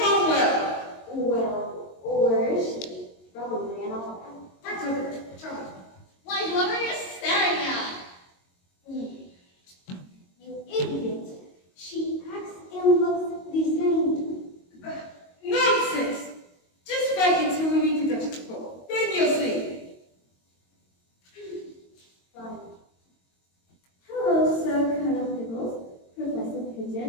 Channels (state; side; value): late; right; 22 ms